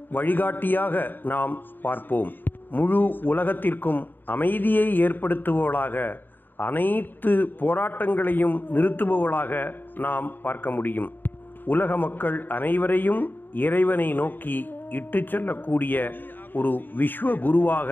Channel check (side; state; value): right; late; 0.092 ms